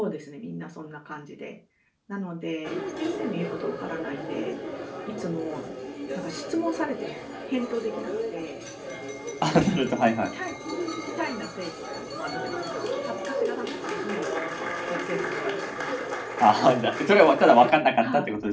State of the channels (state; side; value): identical; both; correlation 1.00